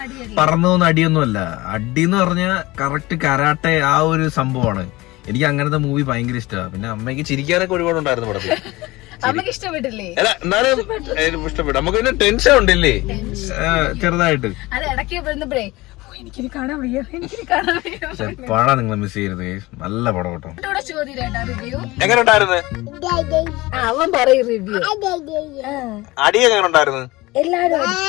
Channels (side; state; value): right; quieter; 20.5 dB